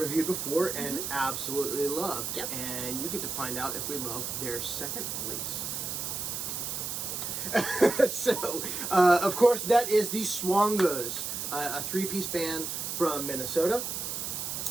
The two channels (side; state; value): right; noise; hiss, 4 dB below the sound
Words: before and absolutely loved. Yep. And you get to find out if we love their second release. So, of course, that is the Swongos, a three-piece band from Minnesota,